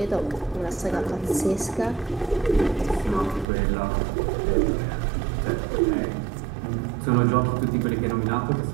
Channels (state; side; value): drops out; left; at 3.5 s